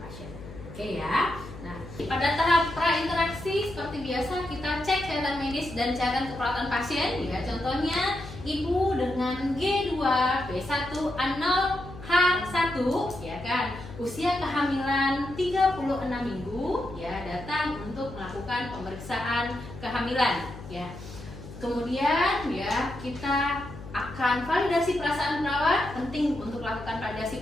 Oke ya. Nah, pada tahap prainteraksi seperti biasa kita cek catatan medis dan catatan keperawatan pasien ya. Contohnya ibu dengan G2, B1, A0, H1 ya kan, usia kehamilan 36 minggu ya, datang untuk melakukan pemeriksaan kehamilan ya. Kemudian ya kita akan validasi perasaan perawat. Penting untuk melakukan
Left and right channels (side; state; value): left; noise; hum, 14 dB below the sound